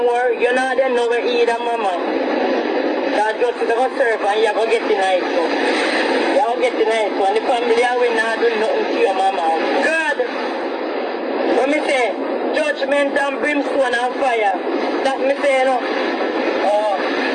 You know they know where either mama. That just to go serve and you go get the nice one. You go get the nice one. The family will not do nothing to your mama. God! When me say judgment and brimstone and fire, that me say no. Oh,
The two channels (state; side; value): identical; both; correlation 1.00